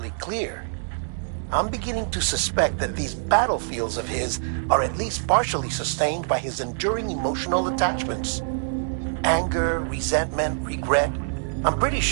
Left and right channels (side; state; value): left; silent; digital silence